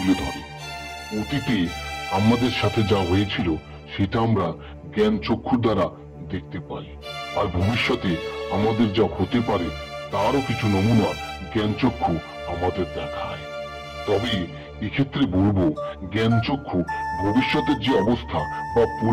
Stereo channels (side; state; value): both; identical; correlation 1.00